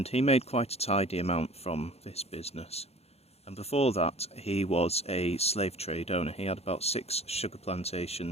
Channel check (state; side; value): late; right; 0.30 ms